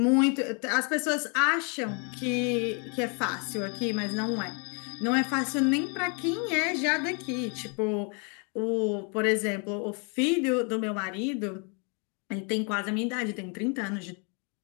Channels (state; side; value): quieter; right; 37.1 dB